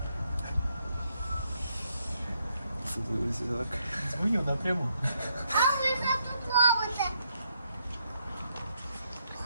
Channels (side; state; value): both; inverted; correlation -0.76